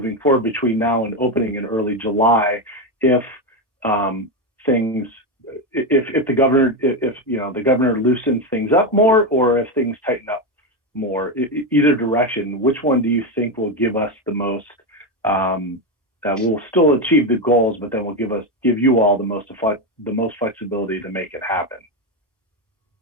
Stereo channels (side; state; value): both; normal; correlation 0.11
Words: forward between now and opening in early July, if the governor loosens things up more, or if things tighten up more. Either direction, which one do you think will give us the most, we'll still achieve the goals, but then will give you all the most flexibility to make it happen?